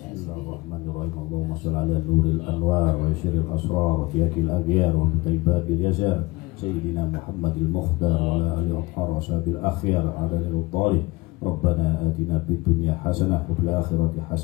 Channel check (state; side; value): quieter; right; 22.3 dB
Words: sendiri. Allahumma shalli ala nuril anwar wa syiril asrar wa fiyakil aghyar wa mutaibabil yazar sayyidina Muhammadil Mukhtar wa ala alihi wa sahbihi akhyar adalil talib. Rabbana atina fid dunya hasanah wa fil akhirati